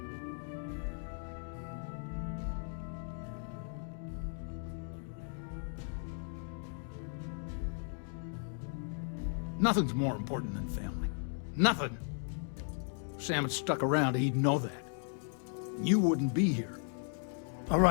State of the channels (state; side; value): silent; right; 54 dB below the other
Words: Nothing's more important than family. Nothing. If Sam had stuck around, he'd know that. You wouldn't be here. All